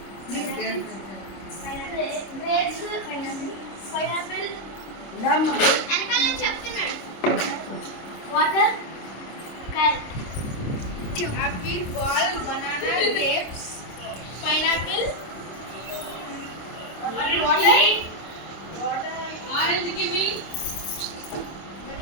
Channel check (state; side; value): late; right; 26 ms